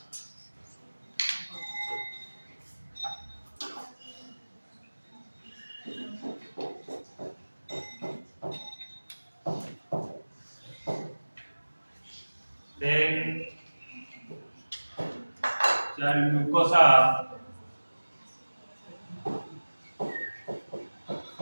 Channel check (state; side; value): inverted; both; correlation -1.00